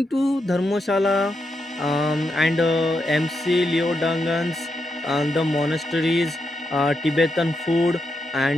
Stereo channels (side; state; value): both; normal; correlation 0.84